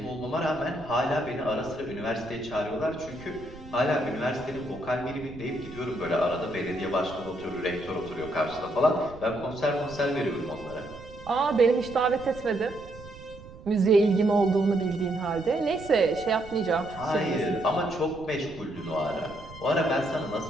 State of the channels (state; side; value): noise; right; rumble, 17 dB below the sound